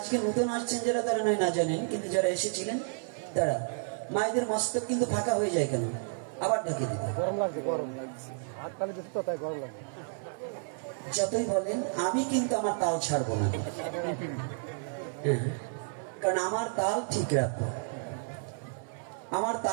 নতুন আসছেন যারা, তারা নয় না জানেন, কিন্তু যারা এসেছিলেন তারা, মায়েদের মস্তক কিন্তু ফাঁকা হয়ে যায় কেন? আবার ঢেকে দিতে গরম লাগছে, গরম লাগছে, হাত তালি দিতে তো তাই গরম লাগছে। যতই বলেন আমি কিন্তু আমার তাল ছাড়বো না, কারণ আমার তাল ঠিক রাখবো। আমার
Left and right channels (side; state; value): left; silent; 57 dB below the other